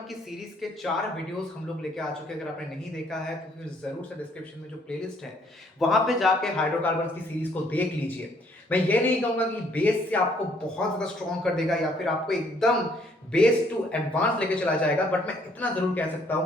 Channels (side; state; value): both; normal; correlation 0.65